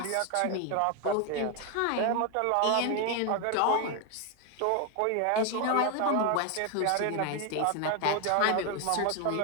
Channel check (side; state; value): both; different; correlation 0.01